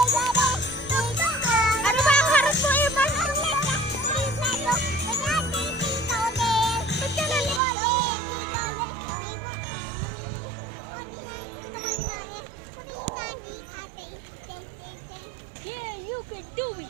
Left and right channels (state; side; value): drops out; left; at 7.6 s